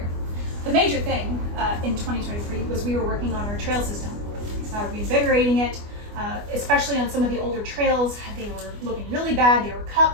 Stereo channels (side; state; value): left; late; 24 ms